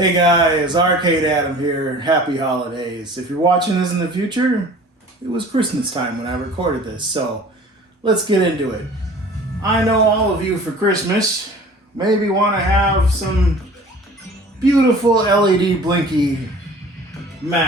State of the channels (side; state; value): both; normal; correlation 0.45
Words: guys, Arcade Adam here. Happy holidays. If you're watching this in the future, it was Christmas time when I recorded this, so let's get into it. I know all of you for Christmas maybe want to have some beautiful LEDBlinky